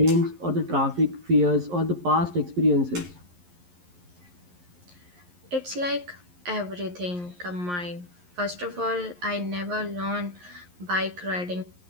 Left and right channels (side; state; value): left; late; 11 ms